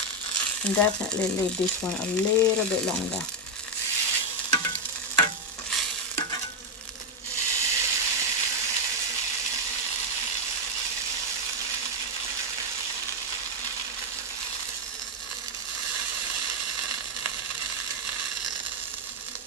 And definitely leave this one a little bit longer.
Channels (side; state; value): both; normal; correlation 0.05